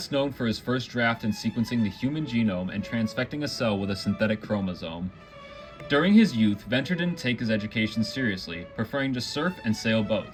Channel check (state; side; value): identical; both; correlation 1.00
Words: known for his first draft in sequencing the human genome and transfecting a cell with a synthetic chromosome. During his youth, Venter didn't take his education seriously, preferring to surf and sail